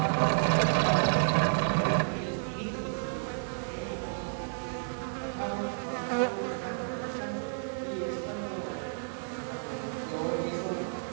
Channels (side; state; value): left; silent; digital silence